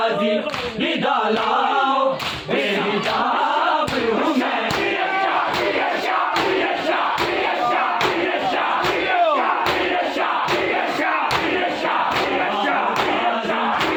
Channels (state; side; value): identical; both; correlation 1.00